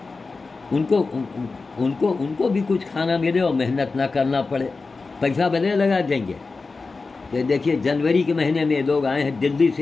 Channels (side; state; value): right; quieter; 4.0 dB